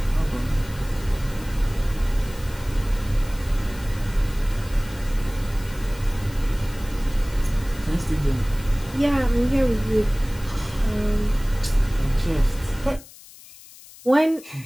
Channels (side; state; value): left; noise; hiss, 20 dB below the sound